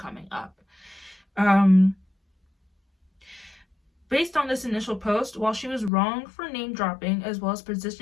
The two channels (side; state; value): right; drops out; at 5.9 s